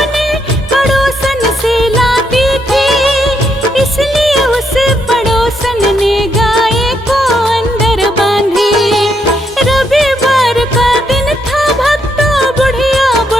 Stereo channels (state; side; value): normal; both; correlation 0.77